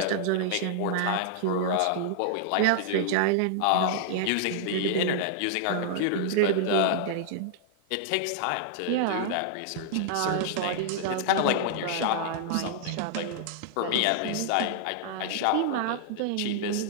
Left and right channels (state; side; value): different; both; correlation -0.01